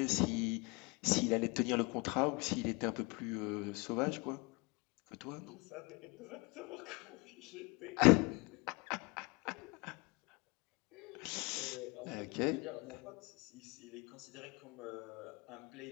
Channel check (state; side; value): quieter; right; 28.4 dB